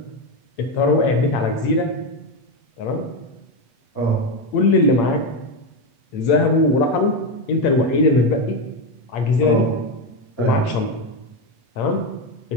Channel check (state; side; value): late; right; 8.7 ms